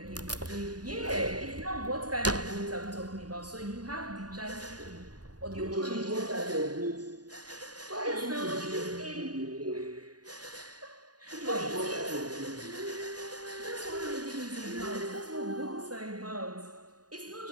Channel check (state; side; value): late; left; 0.69 ms